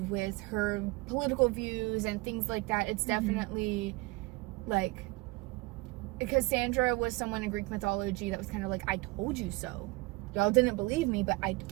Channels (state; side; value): quieter; left; 23.3 dB